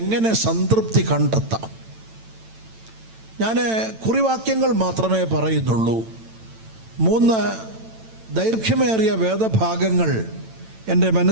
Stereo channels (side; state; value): left; late; 9.0 ms